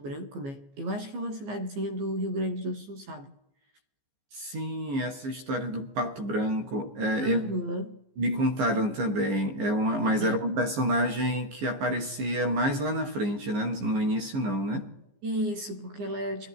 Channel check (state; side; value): late; left; 15 ms